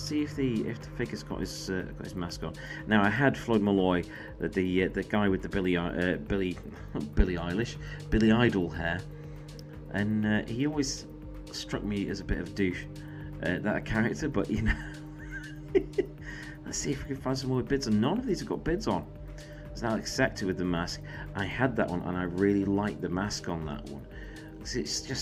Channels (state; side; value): identical; both; correlation 1.00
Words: if the figure's got his mask on. Now I had Floyd Malloy, the guy with the Billie Idol hair. And he always struck me as a bit of a douche, that character, but you know. Let's see if we can find some more bids on. None of these have got bids on. There's Alex Sector with the mask. I had that one and I really like the mask on that one. It's